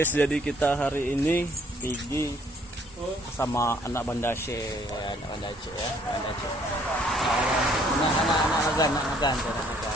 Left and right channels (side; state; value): both; normal; correlation 0.63